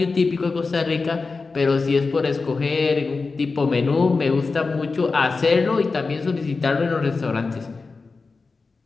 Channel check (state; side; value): quieter; right; 4.1 dB